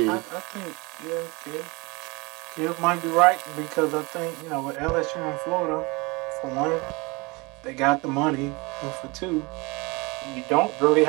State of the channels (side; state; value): left; quieter; 26.1 dB